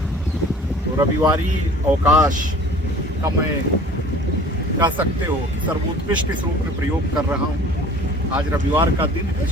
तो रविवारी अवकाश का मैं कह सकते हो कि सर्वोत्कृष्ट इस रूप में प्रयोग कर रहा हूँ। आज रविवार का दिन है,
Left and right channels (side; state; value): both; normal; correlation 0.47